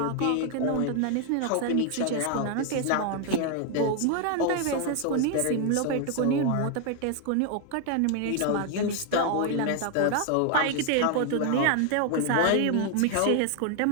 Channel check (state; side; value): different; both; correlation 0.01